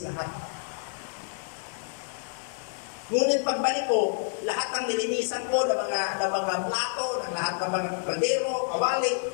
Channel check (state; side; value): silent; right; 59 dB below the other